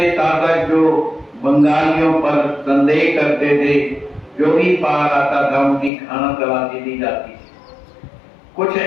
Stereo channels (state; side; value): drops out; right; at 5.9 s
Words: शासक जो बंगालियों पर संदेह करते थे, जो भी पार आता था उनकी खाना तलाशी दी जाती थी। कुछ